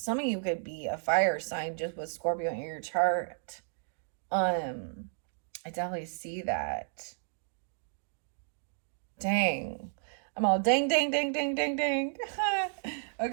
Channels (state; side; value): silent; left; digital silence